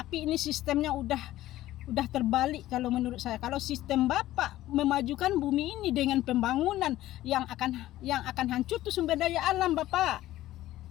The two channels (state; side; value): quieter; right; 14.9 dB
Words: ini sistemnya udah terbalik kalau menurut saya. Kalau sistem Bapak memajukan bumi ini dengan pembangunan yang akan hancur tuh sumber daya alam Bapak.